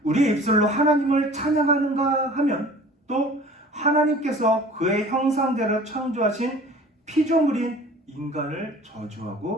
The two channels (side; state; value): both; normal; correlation 0.46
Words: 우리의 입술로 하나님을 찬양하는가 하면 또 하나님께서 그의 형상대로 창조하신 피조물인 인간을